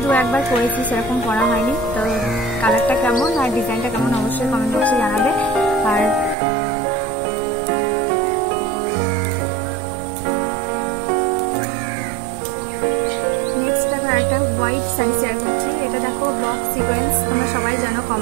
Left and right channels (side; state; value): left; drops out; at 6.4 s